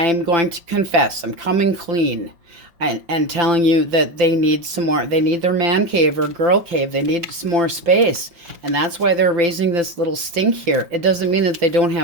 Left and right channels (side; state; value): left; late; 5.9 ms